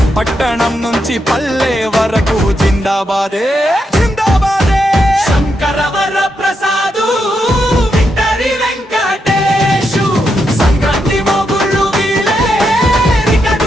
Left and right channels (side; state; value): both; normal; correlation 0.83